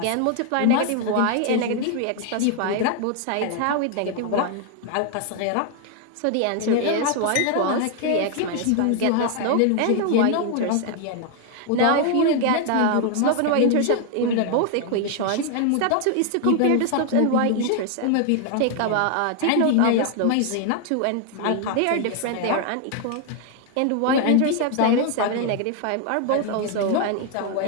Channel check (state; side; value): different; both; correlation 0.00